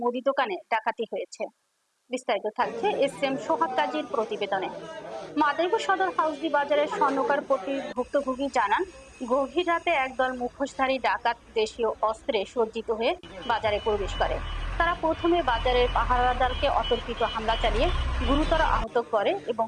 মুদি দোকানে ডাকাতি হয়েছে। বিস্তারিত থাকছে এস.এম. সোহাগ কাজীর প্রতিবেদনে। মাদারীপুর সদর হাউসি বাজারের স্বর্ণকার পট্টির ভুক্তভোগী জানান, গভীর রাতে একদল মুখোশধারী ডাকাত দেশীয় অস্ত্রে সজ্জিত হয়ে বাজারে প্রবেশ করে। তারা প্রথমে বাজারের পাহারাদারকে অতর্কিত হামলা চালিয়ে গুরুতর আহত করে এবং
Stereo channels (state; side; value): identical; both; correlation 1.00